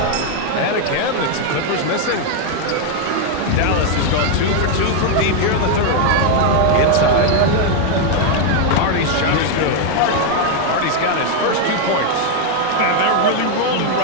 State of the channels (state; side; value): different; both; correlation 0.01